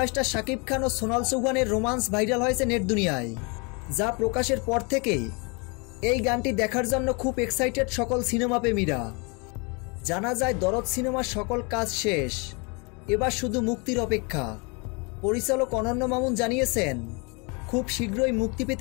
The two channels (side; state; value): right; quieter; 31.5 dB